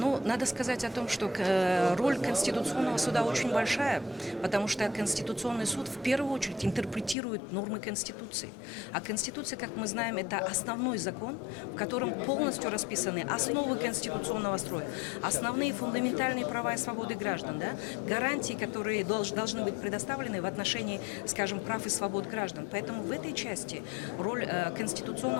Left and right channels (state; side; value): drops out; right; at 7.2 s